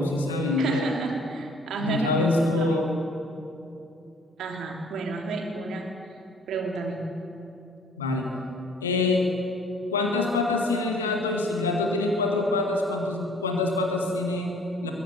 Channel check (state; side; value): normal; both; correlation 0.55